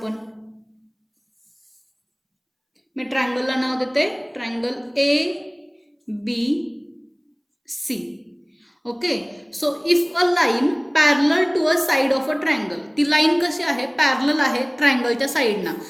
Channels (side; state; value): both; identical; correlation 1.00